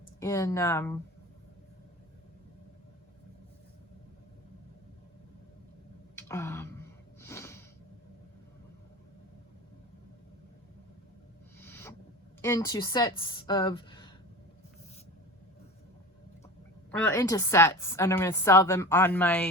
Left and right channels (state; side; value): normal; both; correlation 0.33